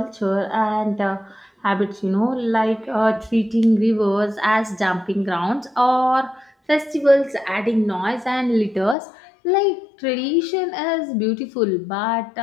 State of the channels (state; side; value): drops out; right; at 9.0 s